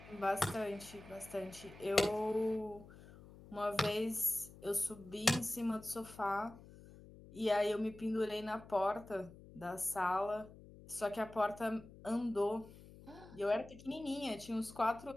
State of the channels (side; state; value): left; noise; hum, 19 dB below the sound